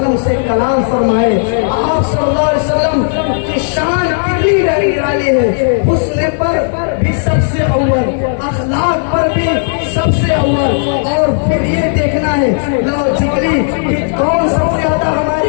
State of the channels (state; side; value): silent; right; digital silence